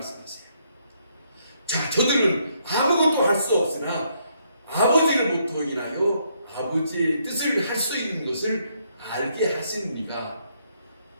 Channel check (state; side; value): inverted; both; correlation -0.73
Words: 자, 저들은 아무것도 할 수 없으나 아버지로부터 인하여 아버지의 뜻을 할 수 있는 것을 알게 하신 이가